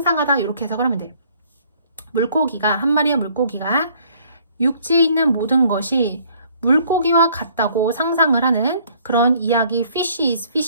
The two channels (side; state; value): both; inverted; correlation -0.61